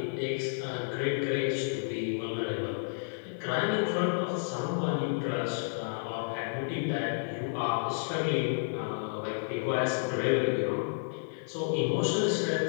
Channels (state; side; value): silent; right; digital silence